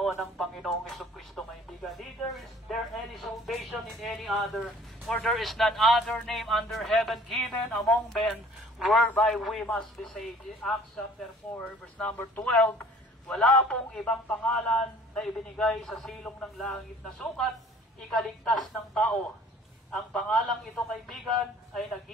ng Panginoong Jesucristo, kaibigan. Neither is there any salvation in any other, for there is none other name under heaven given among men whereby we must be saved. In Acts chapter 4, verse number 12, wala pong ibang pangalan na ibinigay sa silong ng langit na sukat ikaligtas ng tao. Ang pangalang ito, kaibigan, ay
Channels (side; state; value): both; normal; correlation 0.52